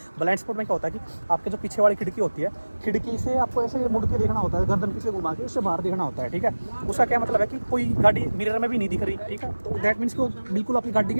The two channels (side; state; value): both; inverted; correlation -1.00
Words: ब्लाइंड स्पॉट में क्या होता है कि आपके जो पीछे वाली खिड़की होती है, खिड़की से आपको ऐसे मुड़ के देखना होता है, गर्दन पीछे घुमा के उससे बाहर देखना होता है, ठीक है। उसका क्या मतलब है कि कोई गाड़ी मिरर में भी नहीं दिख रही, ठीक है, तो दैट मीन्स कि वो बिल्कुल आपकी गाड़ी के